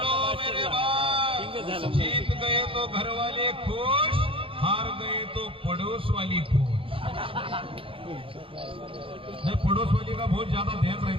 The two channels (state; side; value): late; left; 0.26 ms